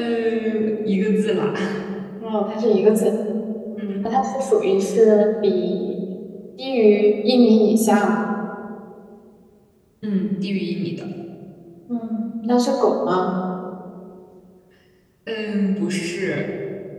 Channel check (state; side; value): identical; both; correlation 1.00